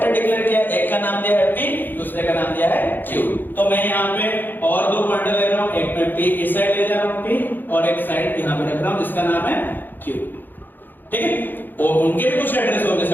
डिक्लेयर किया, एक का नाम दिया है p, दूसरे का नाम दिया है q। तो मैं यहाँ पे और दो पॉइंटर ले रहा हूँ, एक में p इस साइड ले जा रहा हूँ p, और एक साइड यहाँ पे रख रहा हूँ जिसका नाम है q। ठीक है, और उनके भी कुछ एड्रेस होंगे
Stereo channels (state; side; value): late; right; 0.090 ms